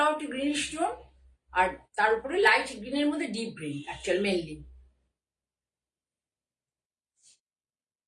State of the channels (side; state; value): both; identical; correlation 1.00